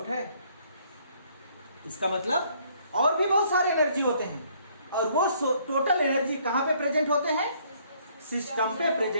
है? इसका मतलब और भी बहुत सारे एनर्जी होते हैं, और वो टोटल एनर्जी कहां पे प्रेजेंट होते हैं, सिस्टम पे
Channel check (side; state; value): both; inverted; correlation -0.64